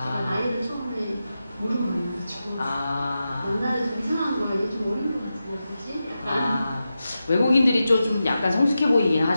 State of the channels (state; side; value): inverted; both; correlation -0.91